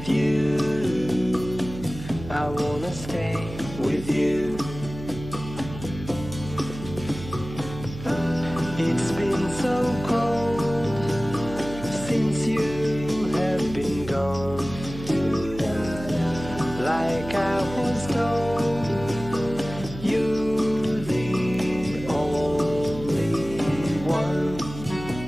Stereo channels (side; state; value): right; noise; hum, 12 dB below the sound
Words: you, I wanna stay with you.